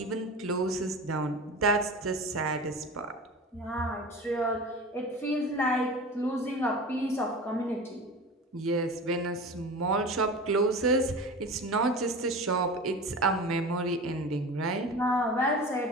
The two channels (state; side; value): normal; both; correlation 0.33